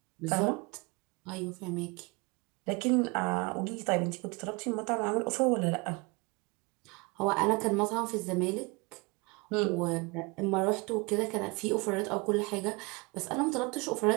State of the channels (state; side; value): quieter; left; 27.8 dB